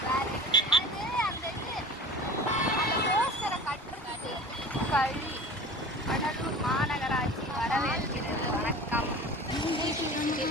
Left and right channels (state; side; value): normal; both; correlation 0.39